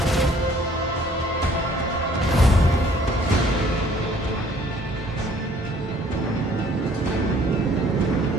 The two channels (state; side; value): normal; both; correlation 0.58